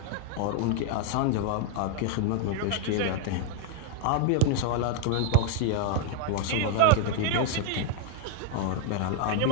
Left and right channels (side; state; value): both; different; correlation 0.00